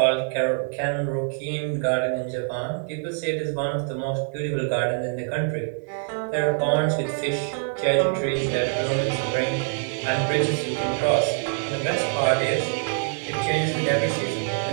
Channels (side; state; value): left; silent; 61 dB below the other